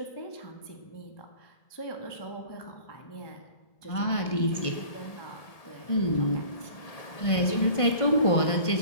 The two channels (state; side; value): late; right; 1.5 ms